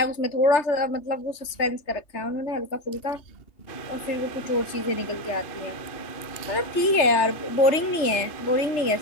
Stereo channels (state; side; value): late; right; 3.3 ms